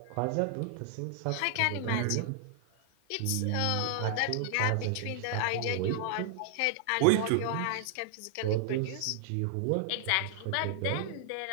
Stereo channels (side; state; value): both; different; correlation -0.01